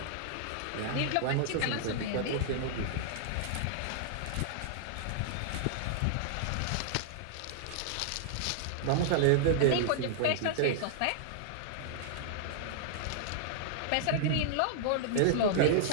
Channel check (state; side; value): different; both; correlation -0.01